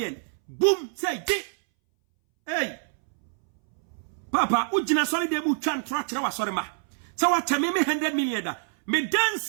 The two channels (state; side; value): silent; left; 61 dB below the other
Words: Boom. Say di. Hey. Papa, ujina sorry de mu chan trachra wa sorry ma. So watch me 100 million da. Me dance